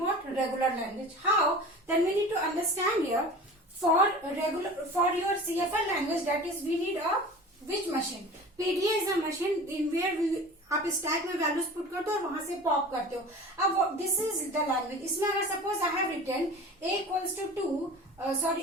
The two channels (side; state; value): both; normal; correlation 0.38